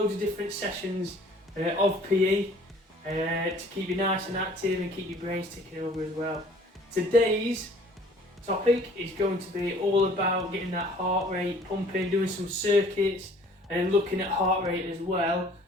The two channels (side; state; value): both; normal; correlation 0.53